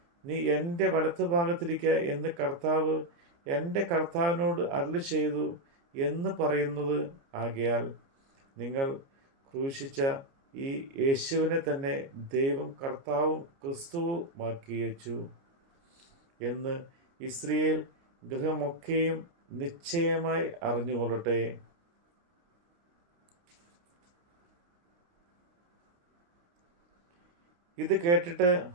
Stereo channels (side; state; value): left; late; 29 ms